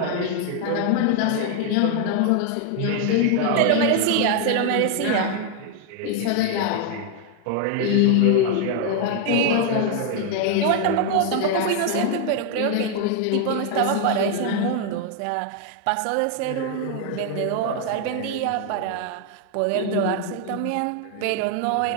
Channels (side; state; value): both; different; correlation 0.00